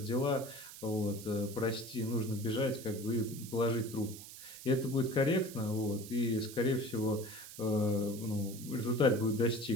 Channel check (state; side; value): noise; right; hiss, 14 dB below the sound